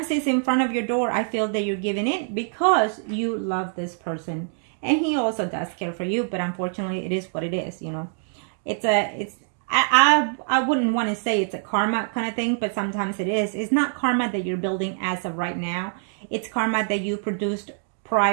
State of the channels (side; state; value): left; silent; 62 dB below the other